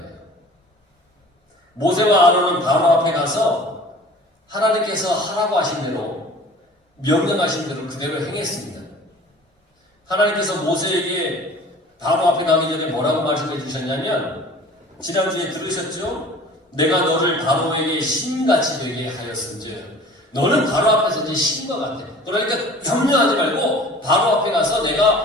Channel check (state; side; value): normal; both; correlation 0.45